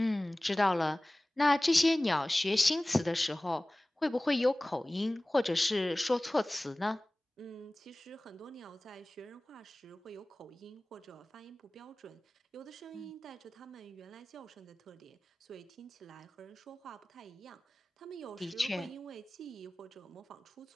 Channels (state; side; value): normal; both; correlation 0.98